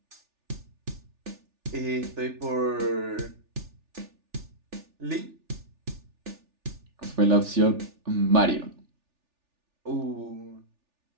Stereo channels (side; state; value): left; late; 3.4 ms